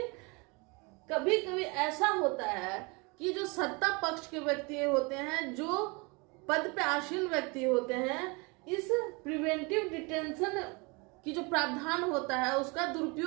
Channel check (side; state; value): left; quieter; 28.7 dB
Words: कभी कभी ऐसा होता है कि जो सत्ता पक्ष के व्यक्ति होते हैं, जो पद पे आसीन व्यक्ति होते हैं, इस प्रिवेंटिव डिटेंशन कि जो प्रावधान होता है उसका